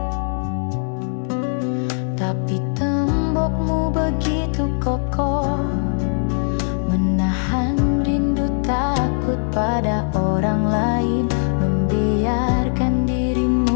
Tapi tembokmu begitu kokoh, menahan rindu takut pada orang lain, membiarkan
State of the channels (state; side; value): silent; right; digital silence